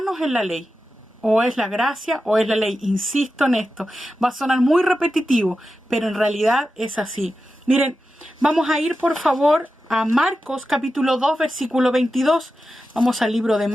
en la ley. O es la gracia o es la ley. Insisto en esto. Va a sonar muy repetitivo, pero en realidad es así. Miren, vamos a ir por favor a Marcos capítulo 2 versículo 22. Vamos al libro de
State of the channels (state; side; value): normal; both; correlation 0.91